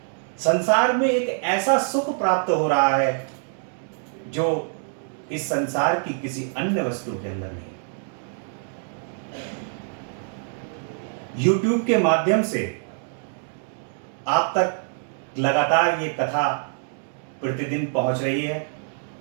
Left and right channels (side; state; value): left; silent; digital silence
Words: संसार में एक ऐसा सुख प्राप्त हो रहा है जो इस संसार की किसी अन्य वस्तु के अंदर नहीं। YouTube के माध्यम से आप तक लगातार ये कथा प्रतिदिन पहुंच रही है।